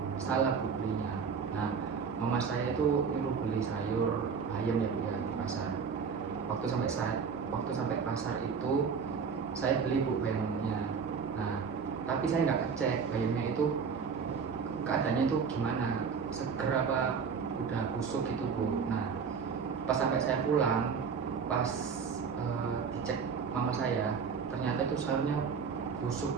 salah Bu belinya. Nah, mama saya itu nyuruh beli sayur ayam ya Bu ya di pasar. Waktu sampai pasar itu saya beli Bu bayamnya. Nah, tapi saya nggak ngecek bayamnya itu keadaannya itu gimana, seger apa udah busuk gitu Bu. Nah, pas sampai saya pulang, pas dicek mama saya, ternyata itu sayurnya busuk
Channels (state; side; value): quieter; left; 6.0 dB